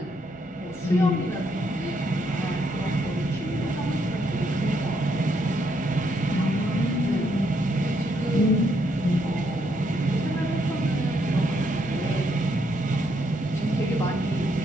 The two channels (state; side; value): normal; both; correlation 0.74